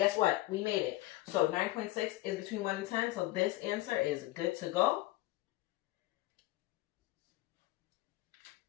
what? We made it. So 9.6 is between 1 and 10, so this answer is good to go.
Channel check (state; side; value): quieter; right; 18.2 dB